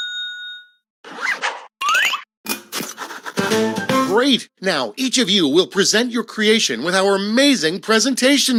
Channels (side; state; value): both; identical; correlation 1.00